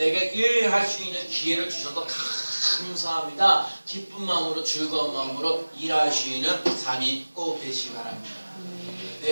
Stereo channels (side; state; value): both; inverted; correlation -1.00